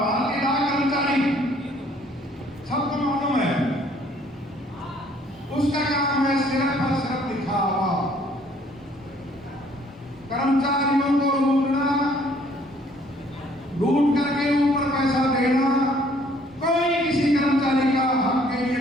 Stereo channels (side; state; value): both; normal; correlation 0.61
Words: डाक कर्मचारी सबको मालूम है, उसका काम है सिर्फ और सिर्फ दिखावा, कर्मचारियों को लूट करके ऊपर पैसा देना। कोई किसी कर्मचारी का हक के लिए